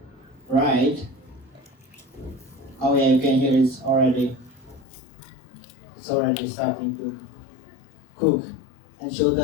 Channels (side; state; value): right; drops out; at 4.9 s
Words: right? Oh yeah, you can hear it's already starting to cook, and she'll